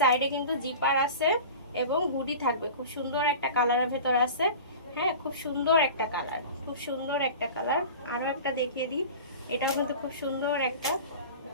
কিন্তু জিপার আছে এবং হুডি থাকবে। খুব সুন্দর একটা কালারের ভেতর আছে, হ্যাঁ খুব সুন্দর একটা কালার, খুব সুন্দর একটা কালার। আরো একটা দেখিয়ে দিই, এটাও কিন্তু খুব সুন্দর একটা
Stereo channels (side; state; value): both; inverted; correlation -0.36